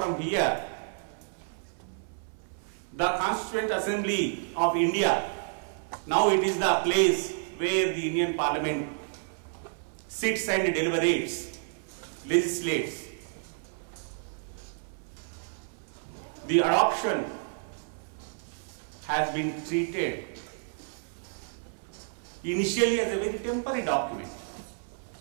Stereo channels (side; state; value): left; silent; 58 dB below the other